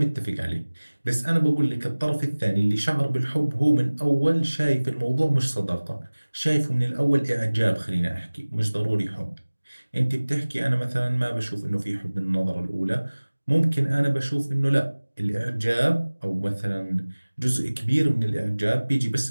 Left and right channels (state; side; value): inverted; both; correlation -1.00